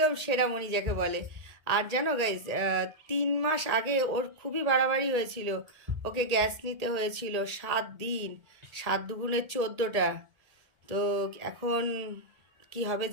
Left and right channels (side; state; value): left; late; 1.8 ms